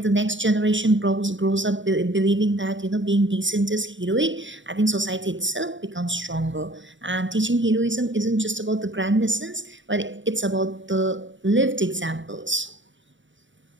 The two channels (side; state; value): left; late; 0.55 ms